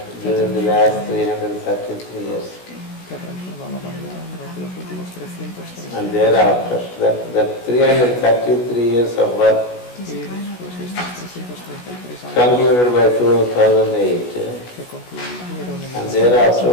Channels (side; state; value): right; late; 16 ms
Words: during the last 333 years. And thereafter, that 333 years of work concluded by 2008. And